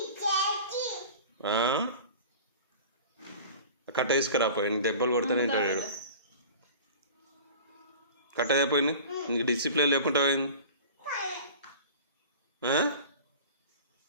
కట్ట తీసుకురా పోయి, దెబ్బలు కొడతానే ఉంటాడు. కట్ట అయిపోయింది. నీకు డిసిప్లిన్ లేకుండా పోయింది.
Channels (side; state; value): both; inverted; correlation -0.39